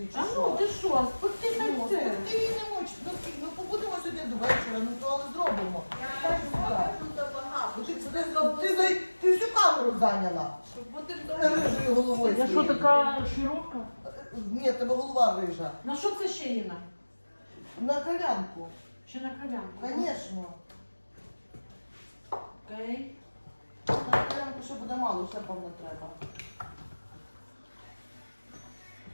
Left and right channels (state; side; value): inverted; both; correlation -1.00